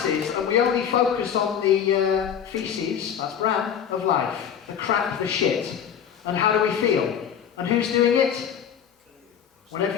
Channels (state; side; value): quieter; right; 8.4 dB